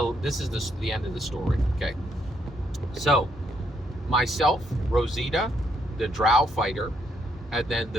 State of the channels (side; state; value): both; normal; correlation 0.74